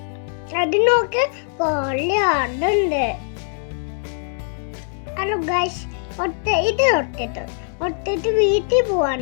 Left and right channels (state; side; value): silent; right; 65 dB below the other